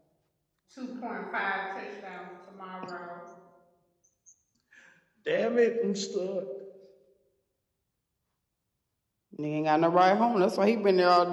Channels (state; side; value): identical; both; correlation 1.00